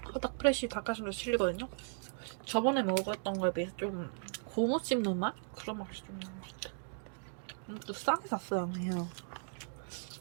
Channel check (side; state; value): left; silent; digital silence